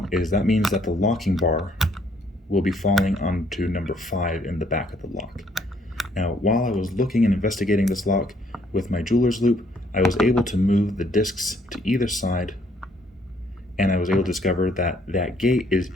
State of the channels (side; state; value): both; normal; correlation 0.66